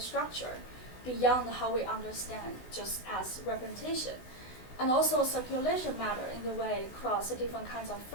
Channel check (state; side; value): late; right; 16 ms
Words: beyond how we understand just as representation. And also circulation matter in the way across the different kinds of